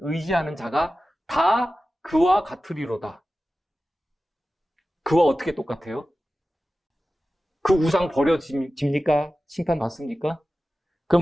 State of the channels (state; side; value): normal; both; correlation 0.95